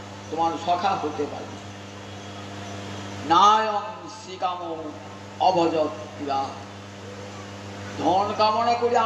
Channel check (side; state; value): both; identical; correlation 1.00